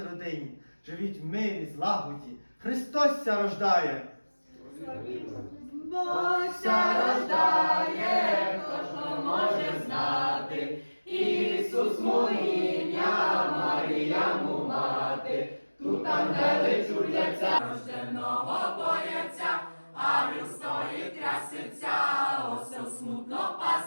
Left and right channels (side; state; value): both; inverted; correlation -1.00